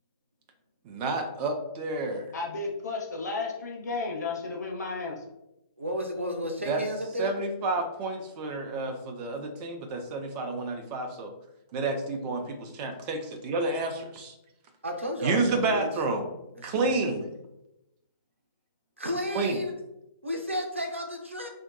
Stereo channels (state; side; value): inverted; both; correlation -0.31